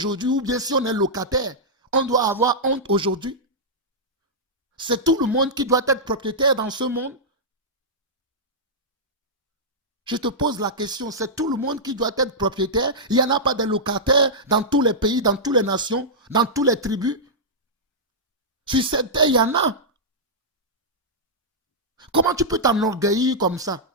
ou bien si on est locataire, on doit avoir honte aujourd'hui. C'est tout le monde qui doit être propriétaire dans ce monde. Je te pose la question, c'est tout le monde qui doit être propriétaire? Il n'y en a pas de locataires dans tous les pays, dans toutes les nations, dans toutes les tribus? Sur cette terre, il y en a. Comment tu peux t'enorgueillir comme ça?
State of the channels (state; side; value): normal; both; correlation -0.11